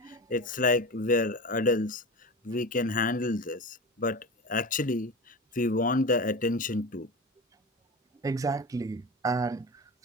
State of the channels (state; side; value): normal; both; correlation 0.27